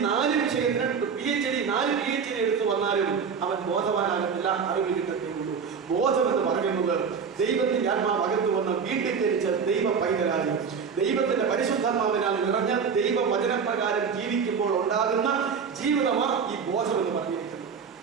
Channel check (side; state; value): left; quieter; 6.2 dB